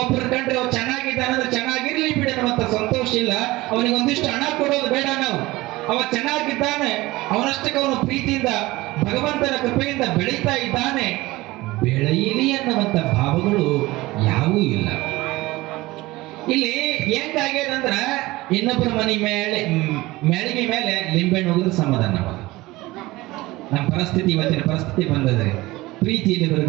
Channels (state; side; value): quieter; left; 19.7 dB